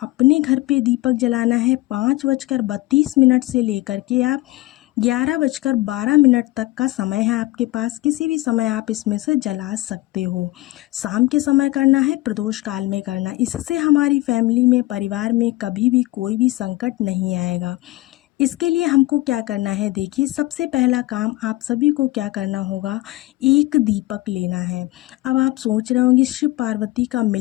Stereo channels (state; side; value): quieter; right; 18.8 dB